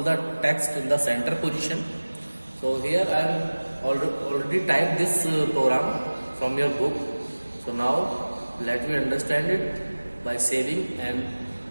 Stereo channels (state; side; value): inverted; both; correlation -1.00